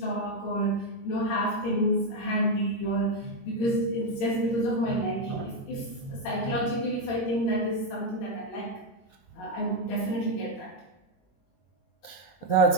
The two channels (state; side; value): late; right; 22 ms